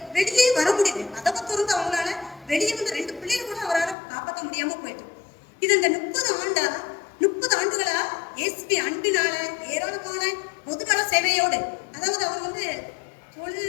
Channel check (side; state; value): right; drops out; at 4.0 s